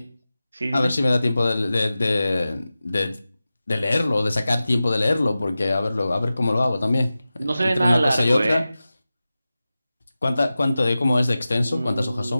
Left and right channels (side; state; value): both; inverted; correlation -0.95